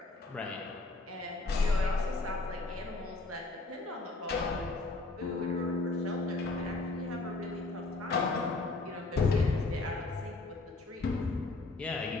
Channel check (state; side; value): quieter; right; 3.3 dB